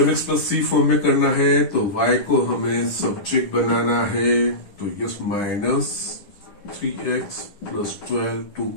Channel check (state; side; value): late; right; 10 ms